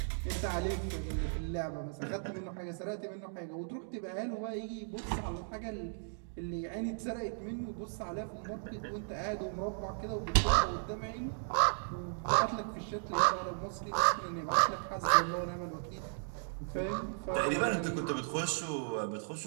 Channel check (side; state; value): left; silent; digital silence